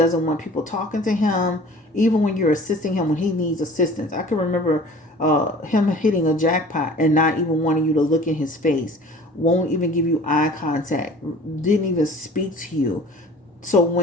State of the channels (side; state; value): both; normal; correlation 0.45